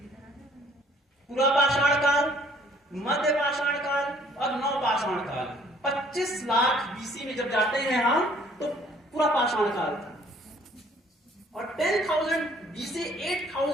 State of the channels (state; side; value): normal; both; correlation 0.59